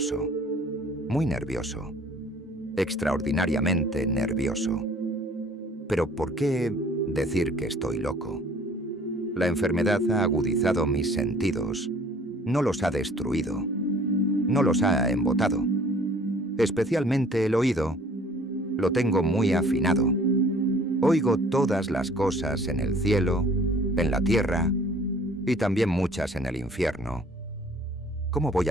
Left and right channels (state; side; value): normal; both; correlation 0.53